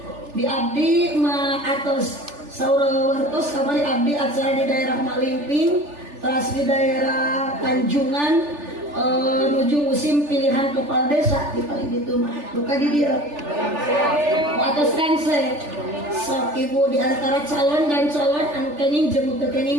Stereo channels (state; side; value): late; left; 3.4 ms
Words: Di abdi ma atos saurawartos kamari abdi acara di daerah Malimping, teras di daerah Tanjungan, menuju musim pilihan kepala desa di paling itu mah buka di dia atas kanse sok ibu di antara calon dan calon anu kening jeung teu